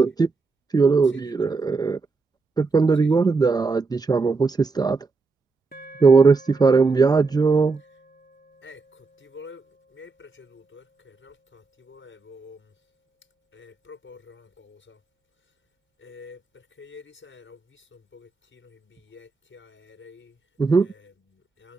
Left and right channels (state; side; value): quieter; left; 4.2 dB